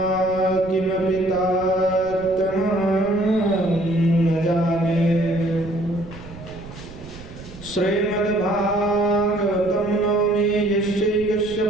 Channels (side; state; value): right; noise; rumble, 16 dB below the sound